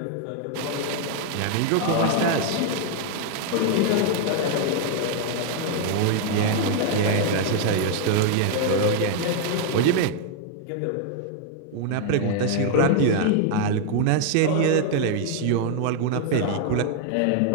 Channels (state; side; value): different; both; correlation 0.00